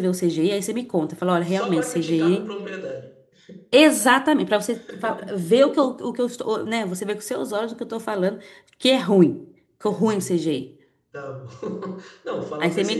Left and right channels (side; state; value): both; identical; correlation 1.00